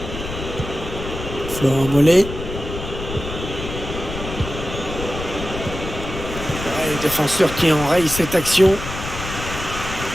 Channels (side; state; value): left; noise; rumble, 8 dB below the sound